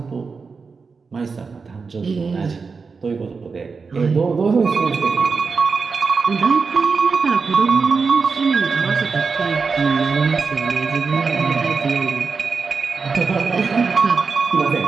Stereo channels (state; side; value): quieter; left; 4.9 dB